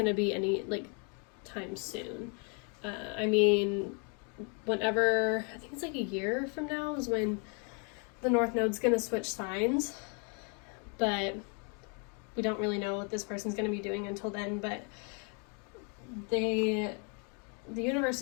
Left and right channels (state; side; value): quieter; right; 37.8 dB